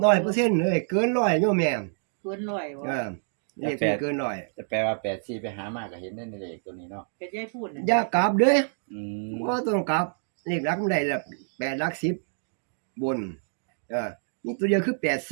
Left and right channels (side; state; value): left; silent; digital silence